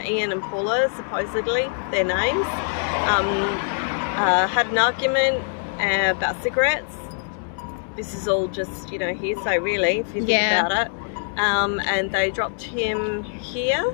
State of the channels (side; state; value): right; silent; digital silence